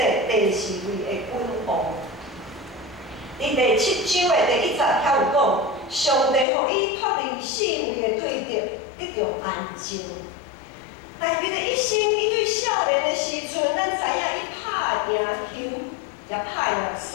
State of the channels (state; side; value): drops out; right; at 6.5 s